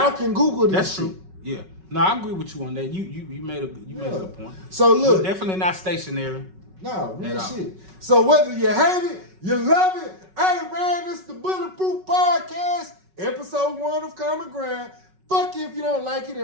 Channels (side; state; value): left; late; 5.3 ms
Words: can Google this. That's shit. true. Yeah. No, I agree with you on that. You made a good point. So look, we're definitely not stationary. No, real shit. So whether you hate it, you love it. Hey man, it's the Bulletproof Podcast, episode 1 of Common Ground. Fuck you if you don't like it,